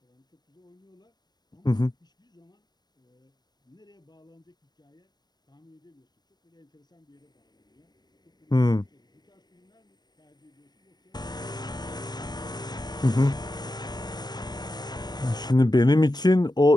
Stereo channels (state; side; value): late; right; 0.20 ms